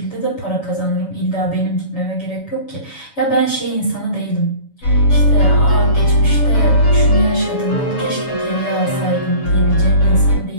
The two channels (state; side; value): late; right; 7.1 ms